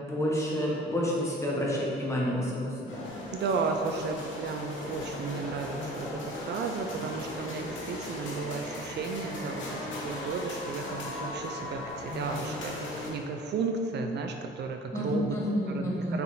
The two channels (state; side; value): normal; both; correlation 0.44